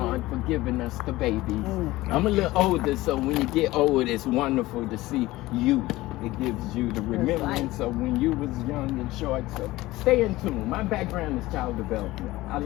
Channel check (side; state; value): right; quieter; 18.3 dB